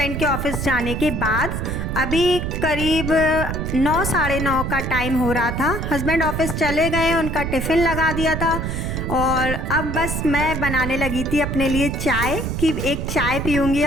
के ऑफिस जाने के बाद। अभी करीब 9 साढ़े 9 का टाइम हो रहा था। हस्बैंड ऑफिस चले गए, उनका टिफ़िन लगा दिया था और अब बस मैं बनाने लगी थी अपने लिए चाय कि एक चाय पीऊँगी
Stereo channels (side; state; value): right; noise; rumble, 3 dB below the sound